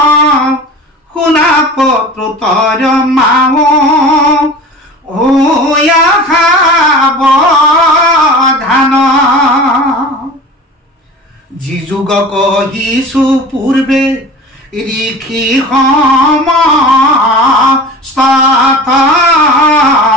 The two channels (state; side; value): normal; both; correlation 0.37